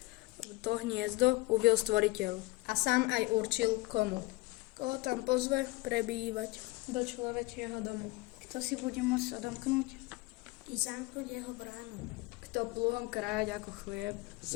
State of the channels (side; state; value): right; quieter; 21.3 dB